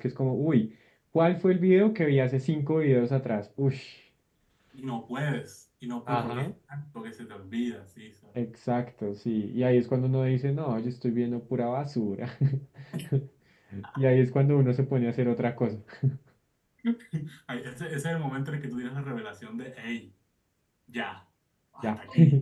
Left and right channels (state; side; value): identical; both; correlation 1.00